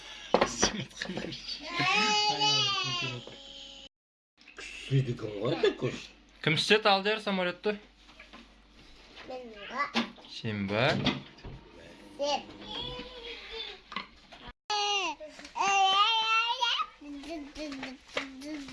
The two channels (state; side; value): identical; both; correlation 1.00